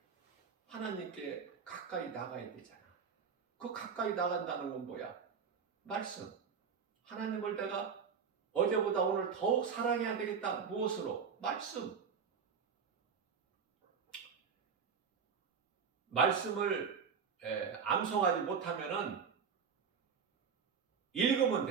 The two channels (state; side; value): quieter; left; 6.3 dB